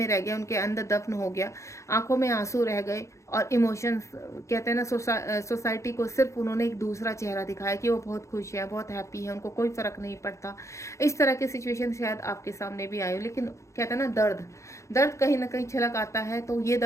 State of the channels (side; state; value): right; late; 0.14 ms